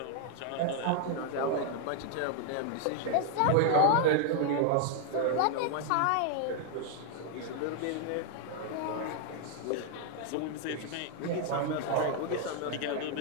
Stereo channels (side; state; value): both; different; correlation 0.00